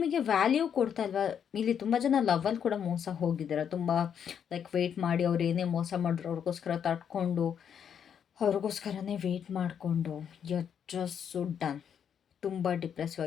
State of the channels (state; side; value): quieter; right; 8.1 dB